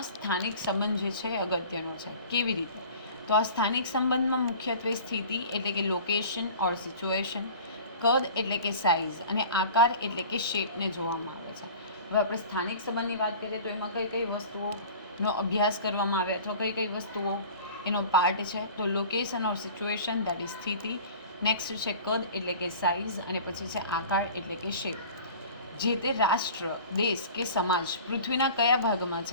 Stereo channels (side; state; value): both; inverted; correlation -0.42